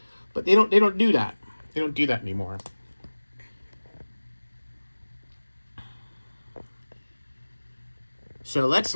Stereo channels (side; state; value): both; inverted; correlation -1.00